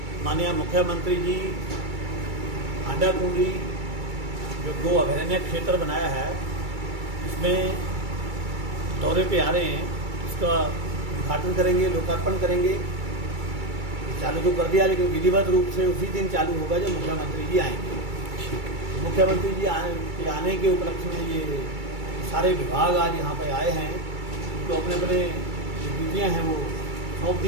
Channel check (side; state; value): left; late; 2.3 ms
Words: माननीय मुख्यमंत्री जी हांडाखुंडी जो गो अभयारण्य क्षेत्र बनाया है, इसमें दौरे पे आ रहे हैं। इसका उद्घाटन करेंगे, लोकार्पण करेंगे। चालू तो कर दिया, लेकिन विधिवत रूप से उसी दिन चालू होगा जब मुख्यमंत्री जी आएंगे। मुख्यमंत्री जी आने के उपलक्ष्य में ये सारे विभाग आज यहाँ पे आए हैं, तो अपने अपने जो ड्यूटियाँ हैं वो सौंप